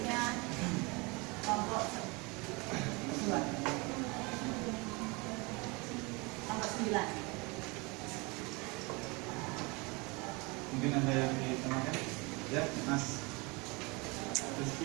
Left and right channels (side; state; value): left; quieter; 27.4 dB